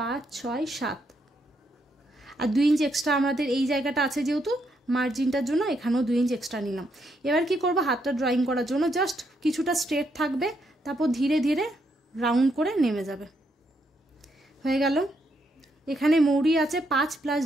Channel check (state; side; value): normal; both; correlation 0.77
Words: 6 7, আর 2 ইঞ্চ এক্সট্রা আমাদের এই জায়গাটা আছে যেহেতু মার্জিনটার জন্য, এখানেও 2 ইঞ্চ এক্সট্রা নিলাম। এবার কি করব, হাতটা ড্রয়িং করার জন্য জাস্ট কিছুটা স্ট্রেট থাকবে, তারপর ধীরে ধীরে রাউন্ড করে নেমে যাবে। হয়ে গেল। এখানে মৌরি আছে 5